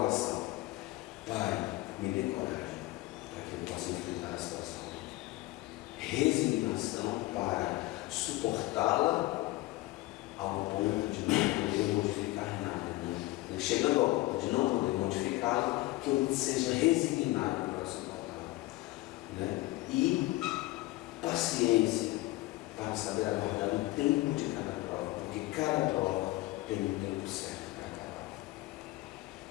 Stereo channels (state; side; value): quieter; right; 19.2 dB